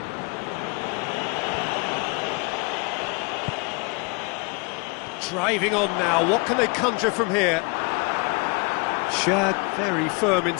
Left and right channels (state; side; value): quieter; right; 30.7 dB